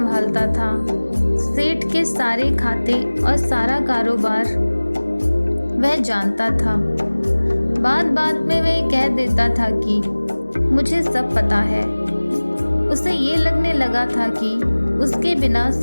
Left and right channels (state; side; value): inverted; both; correlation -1.00